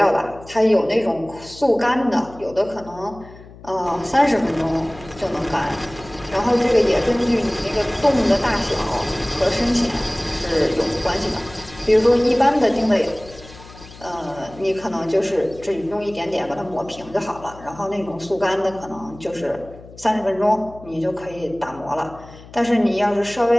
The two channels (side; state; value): left; noise; hum, 19 dB below the sound